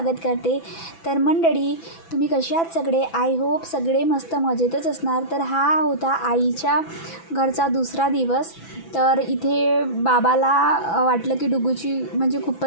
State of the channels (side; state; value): right; late; 6.0 ms